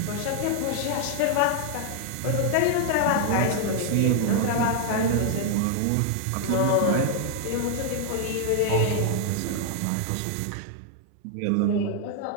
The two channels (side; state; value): both; different; correlation 0.00